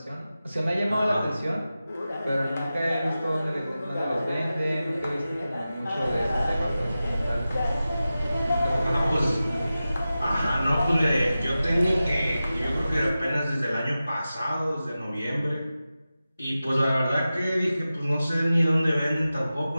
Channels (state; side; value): inverted; both; correlation -0.94